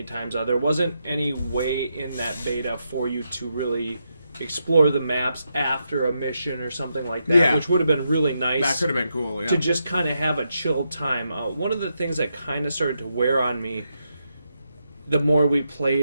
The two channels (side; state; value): both; inverted; correlation -0.83